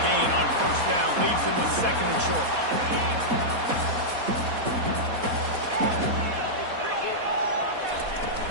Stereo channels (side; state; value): left; late; 4.1 ms